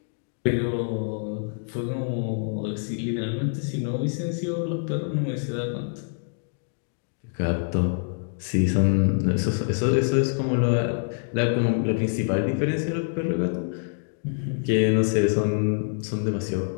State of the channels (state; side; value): silent; right; digital silence